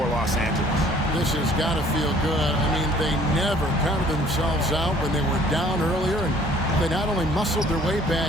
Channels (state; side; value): normal; both; correlation 0.56